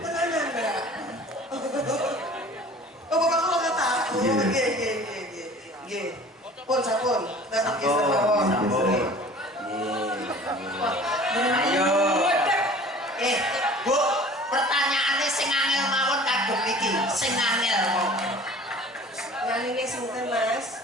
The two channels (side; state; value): both; normal; correlation 0.45